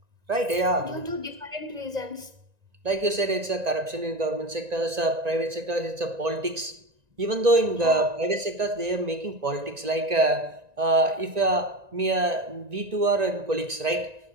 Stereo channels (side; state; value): left; late; 1.9 ms